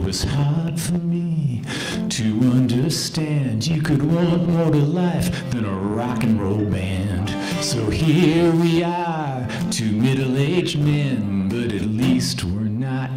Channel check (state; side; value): identical; both; correlation 1.00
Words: Was hard for me to understand you could want more to life than a rock and roll band. So here we are, 2 middle-aged men, but at least we're